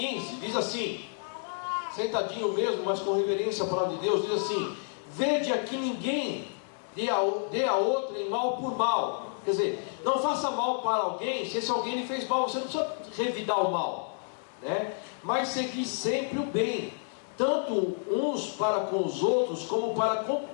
diz assim, sentadinho mesmo, mas com reverência à palavra de Deus, diz assim: vede aqui ninguém dê a outro em mal por mal. Quer dizer, não faça mal para alguém, se esse alguém lhe fez mal, você não precisa revidar o mal, né? Mas segui sempre o bem, tanto uns para com os outros, como para com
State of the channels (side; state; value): right; silent; digital silence